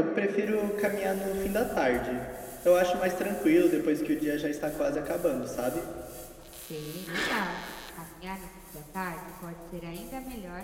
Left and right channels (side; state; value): both; identical; correlation 1.00